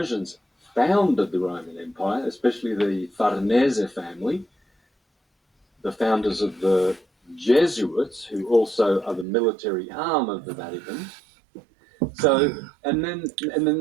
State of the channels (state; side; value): drops out; left; at 9.2 s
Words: founded the Roman Empire, especially the Farnese family, the founders of the Jesuits, who also are the military arm of the Vatican. So, and then